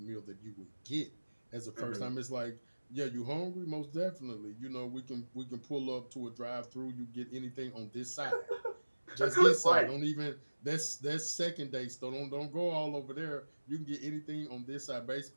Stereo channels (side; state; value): both; inverted; correlation -1.00